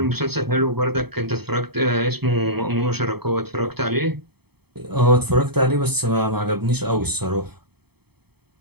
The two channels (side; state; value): left; late; 0.97 ms